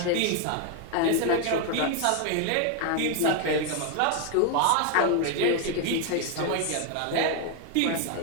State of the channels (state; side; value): different; both; correlation 0.01